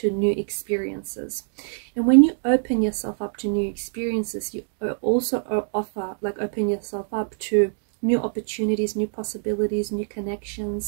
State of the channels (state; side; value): silent; left; digital silence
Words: new experiences. And when you open yourself up to new experiences, you also open yourself up to new opportunities, new possibilities, new